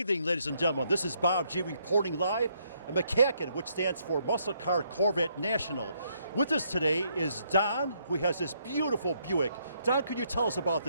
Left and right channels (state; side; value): inverted; both; correlation -0.73